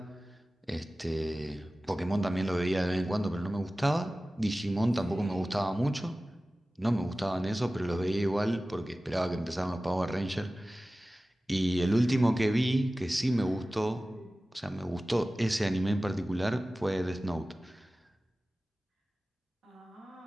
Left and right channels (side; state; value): both; normal; correlation 0.97